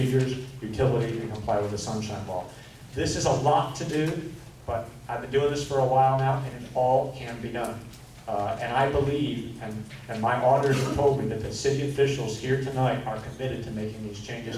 utility, and comply with the Sunshine Law. This is a lot to do, but I've been doing this for a while now, and it all can be done. And I believe, and my auditors have told me that the city officials here tonight are committed to making these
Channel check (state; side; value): identical; both; correlation 1.00